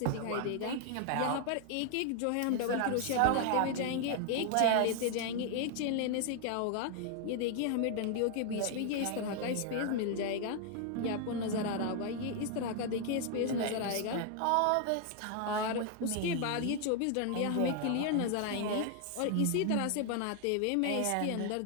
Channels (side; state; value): both; different; correlation 0.00